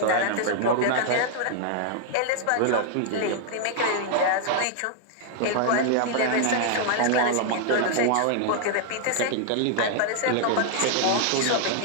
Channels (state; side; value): different; both; correlation 0.00